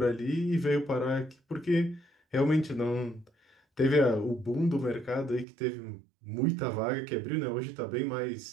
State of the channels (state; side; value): drops out; left; at 5.5 s